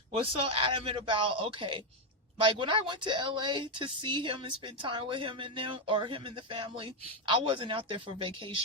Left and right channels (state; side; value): normal; both; correlation 0.04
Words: was so adamant about, okay, like when I went to LA to see him and spend time with him and them, or him and the family, I wasn't out there for